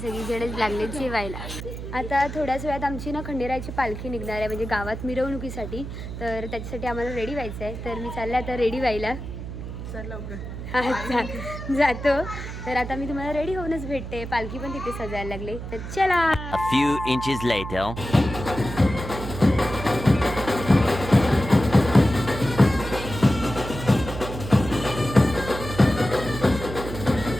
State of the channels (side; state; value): right; noise; hum, 8 dB below the sound